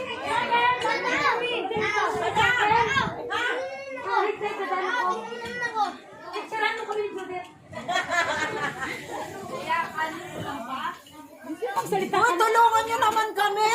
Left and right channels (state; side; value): identical; both; correlation 1.00